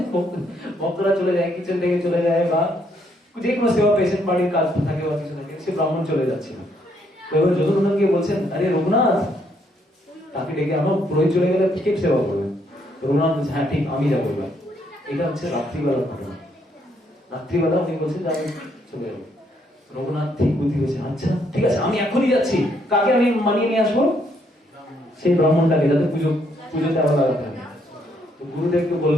ভক্তরা চলে যায়, কিচেন থেকে চলে যায়, বা যে কোনো সেবা পেশেন্ট বাড়ির কাজ থাকে বা কিছু থাকে, সে ব্রাহ্মণ চলে যাচ্ছিল। তো এবার যদুনন্দন গিয়ে বলছেন, আরে রঘুনাথ, তাকে ডেকে আমার পুরোহিত চলে গেলে কে সেবা করবে? রঘুনাথ বলছে, হ্যাঁ ঠিক, আমি যাবো এবার। এটা হচ্ছে রাত্রিবেলার ঘটনা। রাত্রিবেলা উনি বলছেন যে আমি চলে যাবো। রঘুনাথ ঠিক বুদ্ধি হয়েছে, আচ্ছা ঠিক আছে, আমি এখনই যাচ্ছি। কাকে আমি মানিয়ে নিয়ে আসবো? সেই ব্রাহ্মণটাকে, যাতে পুজোতে আবার লাগাতে হবে। তো গুরুদেবকে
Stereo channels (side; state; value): both; normal; correlation 0.72